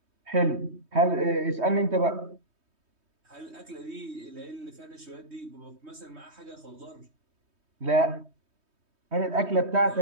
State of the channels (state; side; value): late; left; 3.2 ms